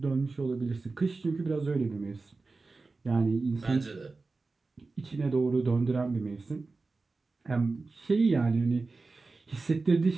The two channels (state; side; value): quieter; left; 3.8 dB